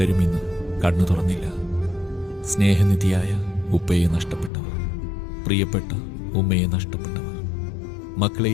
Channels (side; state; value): right; drops out; at 4.5 s